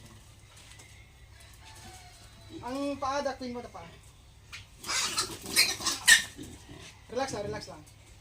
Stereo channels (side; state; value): both; identical; correlation 1.00